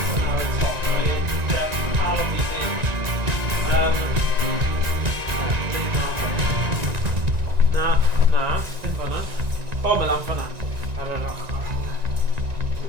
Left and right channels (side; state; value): left; late; 1.9 ms